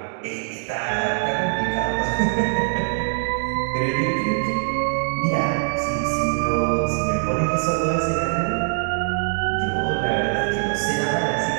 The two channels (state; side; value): silent; left; 64 dB below the other